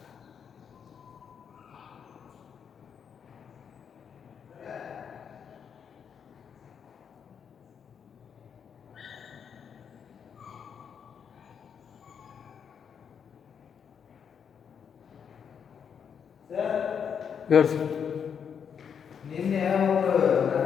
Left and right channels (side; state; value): right; quieter; 7.3 dB